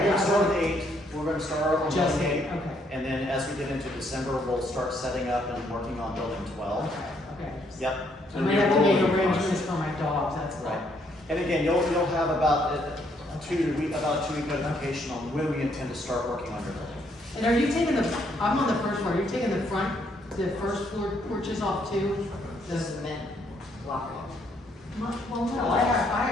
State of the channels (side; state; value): both; normal; correlation 0.70